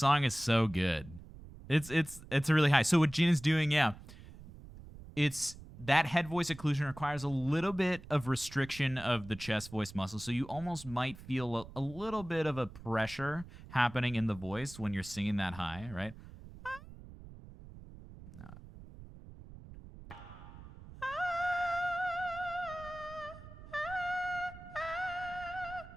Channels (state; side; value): noise; right; rumble, 16 dB below the sound